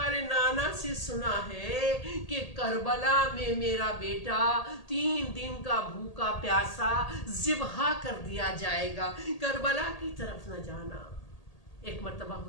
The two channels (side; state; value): right; late; 1.8 ms